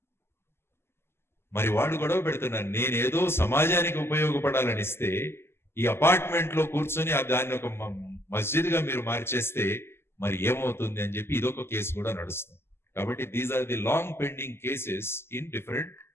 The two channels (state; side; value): late; right; 0.12 ms